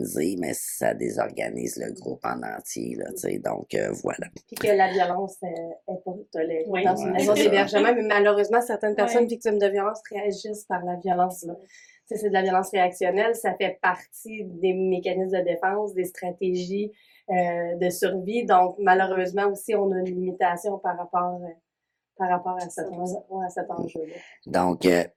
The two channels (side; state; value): both; identical; correlation 1.00